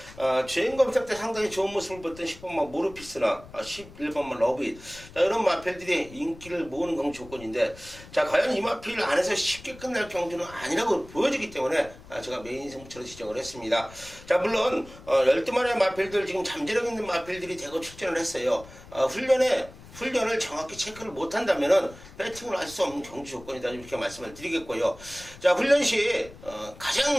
주행 검사 때 상당히 좋은 모습을 보였던 10번마 모르피스나 11번마 러브잇 이런 마필들이 인기를 모으는 경주 조건인데 자, 과연 이 마필 안에서 쉽게 끝날 경주는 아니라고 보여지기 때문에 제가 메인 승부처로 지정을 했습니다. 자, 물론 12마리의 마필들 지금 잠재력 있는 마필들이 대거 출전을 했어요. 훈련을 정확히 체크를 못한다면은 배팅을 할 수 없는 경주 조건이다 이렇게 말씀을 드리겠고요. 자, 훈련 시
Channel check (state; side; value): noise; left; rumble, 19 dB below the sound